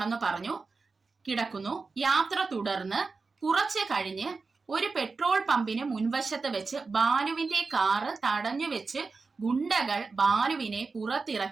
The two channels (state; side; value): quieter; left; 4.3 dB